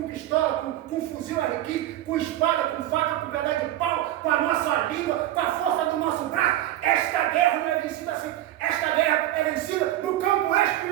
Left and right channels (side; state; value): left; quieter; 13.9 dB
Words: pistola, com fuzil RQ, com espada, com faca, com pedaço de pau, com a nossa língua, com a força do nosso braço. Esta guerra não é vencida assim. Esta guerra é vencida no campo